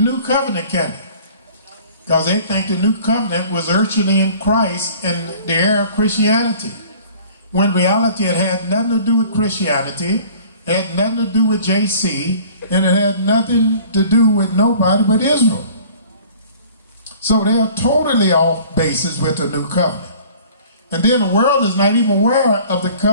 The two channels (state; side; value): inverted; both; correlation -0.49